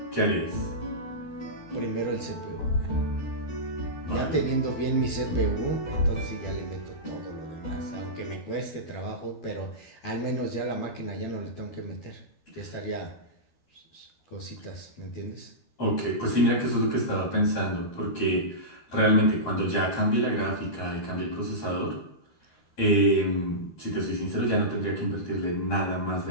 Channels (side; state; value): right; late; 12 ms